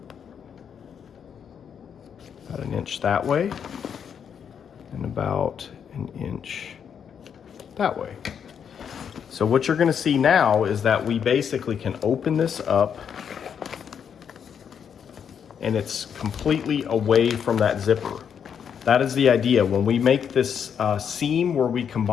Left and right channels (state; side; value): quieter; right; 7.7 dB